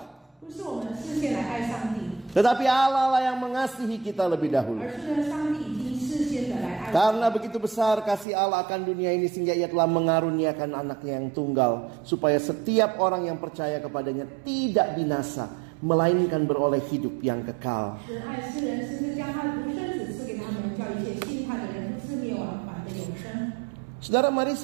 不是我们事先来爱上帝， tetapi Allah lah yang mengasihi kita lebih dahulu. 而是呢，上帝已经事先的来爱我们。 Karena begitu besar kasih Allah akan dunia ini sehingga ia telah mengaruniakan anaknya yang tunggal, supaya setiap orang yang percaya kepadanya tidak binasa, melainkan beroleh hidup yang kekal. 神爱世人，甚至将他的独生子赐给他们，叫一切信他的人不至灭亡，反得永生。 Saudara, mari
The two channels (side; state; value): left; drops out; at 8.2 s